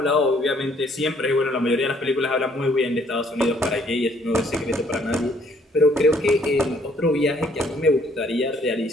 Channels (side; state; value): both; normal; correlation 0.64